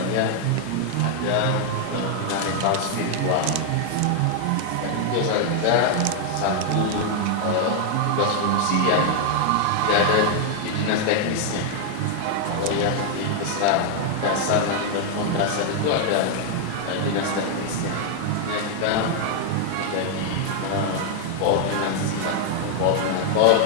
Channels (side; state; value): both; different; correlation 0.00